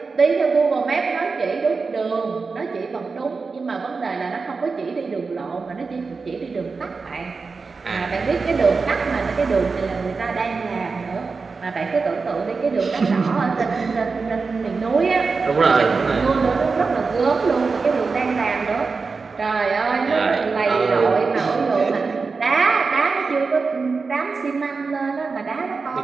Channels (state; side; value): quieter; left; 4.5 dB